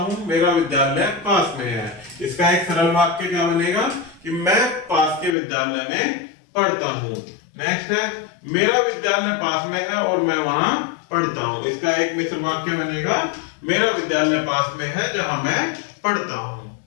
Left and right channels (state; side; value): drops out; right; at 5.4 s